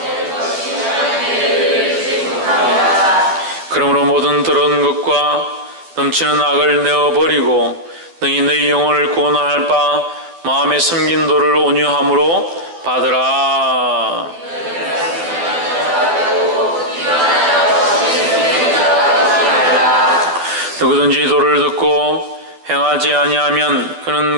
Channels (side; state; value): left; late; 12 ms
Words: 그러므로 모든 더러운 것과 넘치는 악을 내어버리고 너희 영혼을 구원할 바 마음에 섬긴 도를 온유함으로 받으라. 누구든지 도를 듣고 행하지 아니하면